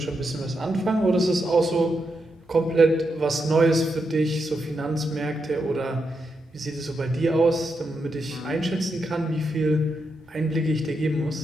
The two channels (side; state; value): both; normal; correlation 0.84